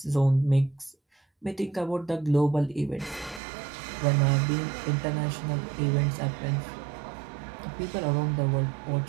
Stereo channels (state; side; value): drops out; left; at 3.4 s